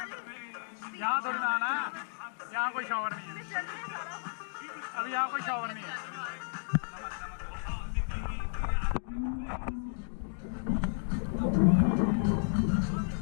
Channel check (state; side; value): silent; right; digital silence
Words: यहाँ थोड़ी ना आना है, यहाँ कोई शॉवर नहीं है। अभी यहाँ कोई शॉवर नहीं है।